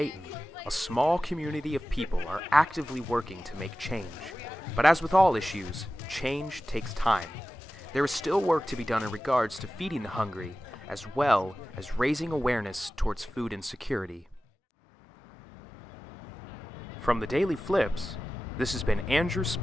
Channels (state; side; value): normal; both; correlation 0.95